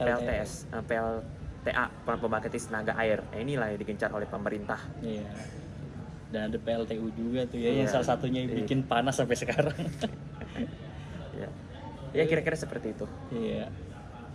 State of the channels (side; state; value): both; identical; correlation 1.00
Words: pembangkit tenaga air. Nah, inilah yang digencar oleh pemerintah. Iya. Dan ada PLTU juga tuh ya, yang salah satunya yang bikin panas sampai sekarang. Ya kira-kira seperti itu. Iya.